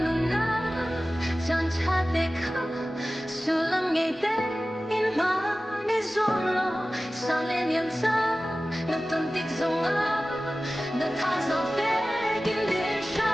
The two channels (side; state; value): both; normal; correlation 0.96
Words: sulam ngày tết in mà đi ruộng lo sang lên niềm sáng nó tuần tích dòng nó tha dòng tết kinh đến